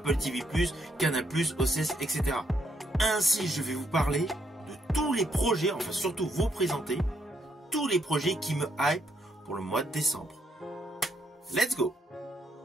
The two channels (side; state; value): both; normal; correlation 0.75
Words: TV+, Canal+, OCS, etc. Ainsi, je vais vous parler de tous les projets, enfin surtout vous présenter tous les projets qui me hype pour le mois de décembre. Let's go!